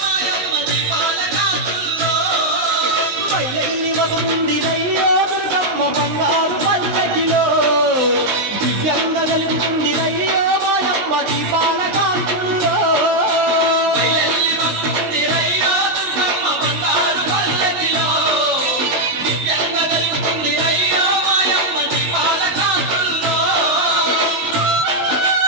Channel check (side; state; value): left; late; 19 ms